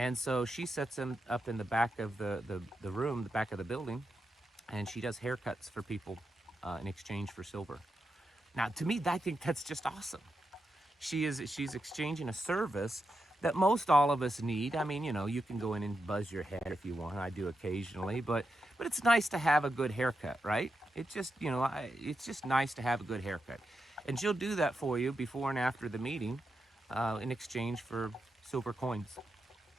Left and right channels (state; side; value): normal; both; correlation 0.86